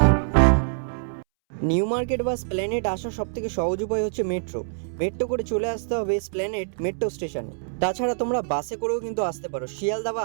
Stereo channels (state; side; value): silent; left; 62 dB below the other